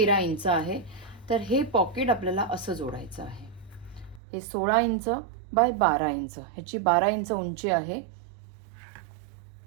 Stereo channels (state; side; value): drops out; left; at 4.2 s